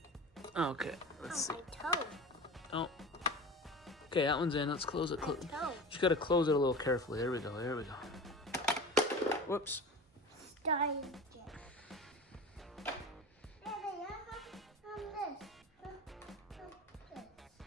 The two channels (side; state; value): both; normal; correlation 0.33